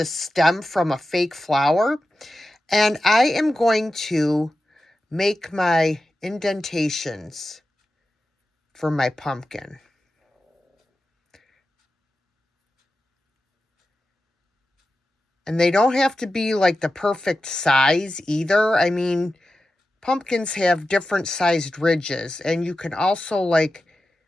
stem from a fake flower, and I am going to make my indentations for my pumpkin. And they don't have to be like the perfect size either. I mean, pumpkins have different sized ridges, and you can also like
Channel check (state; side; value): normal; both; correlation 0.93